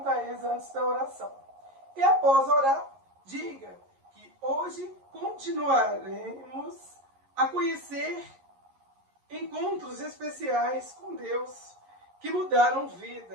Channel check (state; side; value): late; left; 11 ms